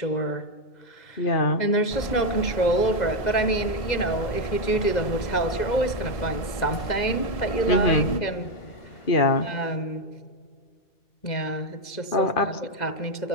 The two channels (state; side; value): late; right; 2.0 ms